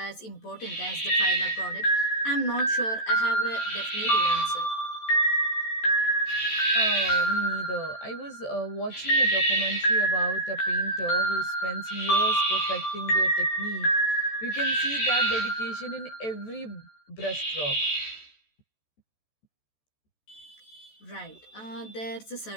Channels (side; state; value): right; late; 14 ms